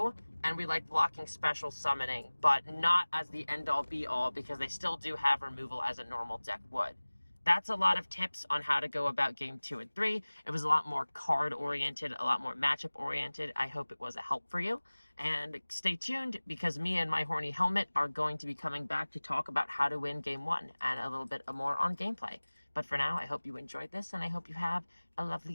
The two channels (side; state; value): both; inverted; correlation -1.00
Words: And we like blocking special summoning, but not as the end-all be-all because they still do have removal as a normal deck would. That's a lot of tips on how to go about game 2 and 3. It was a lot more card-oriented, a lot more matchup-oriented. I hope it was a help for you. And stay tuned because me and my horny helmet are going to be coming back to talk about how to win game 1 and a little bit more on gameplay. But for now, I hope you enjoyed this and I hope you have a